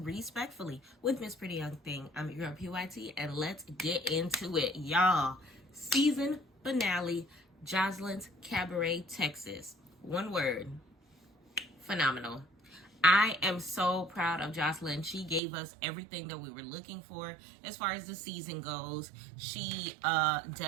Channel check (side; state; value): left; drops out; at 15.4 s